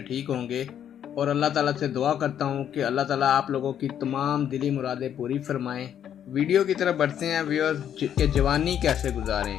ठीक होंगे और अल्लाह ताला से दुआ करता हूँ कि अल्लाह ताला आप लोगों की तमाम दिली मुरादें पूरी फरमाएं। वीडियो की तरफ बढ़ते हैं व्यूअर्स कि जवानी कैसे गुजारें।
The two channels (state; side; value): quieter; right; 9.6 dB